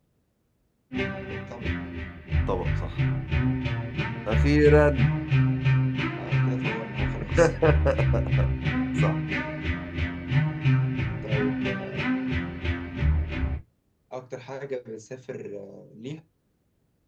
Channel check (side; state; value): both; identical; correlation 1.00